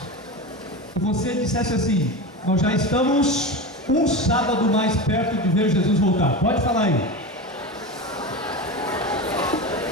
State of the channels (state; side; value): normal; both; correlation 0.24